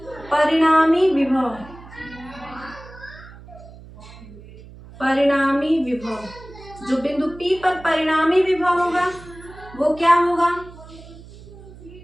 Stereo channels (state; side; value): noise; right; hum, 19 dB below the sound